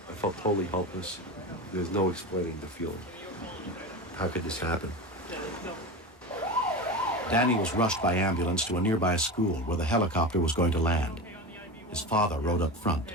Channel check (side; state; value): both; normal; correlation 0.25